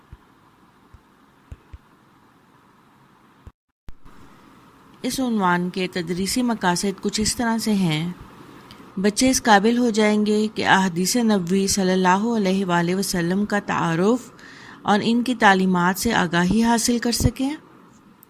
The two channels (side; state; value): both; identical; correlation 1.00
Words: اس عنوان کے تدریسی مقاصد کچھ اس طرح سے ہیں: بچے اس قابل ہو جائیں گے کہ احادیث نبوی صلی اللہ علیہ وآلہ وسلم کا تعارف اور ان کی تعلیمات سے آگاہی حاصل کر سکیں،